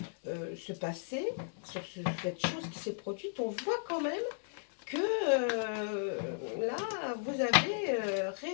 passé, sur cette chose qui s'est produite, on voit quand même que là, vous avez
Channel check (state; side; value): silent; right; digital silence